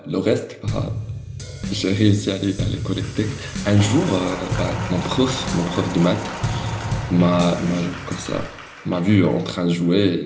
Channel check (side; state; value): both; identical; correlation 1.00